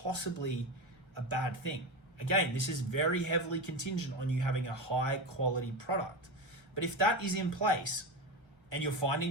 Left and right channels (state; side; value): late; left; 1.4 ms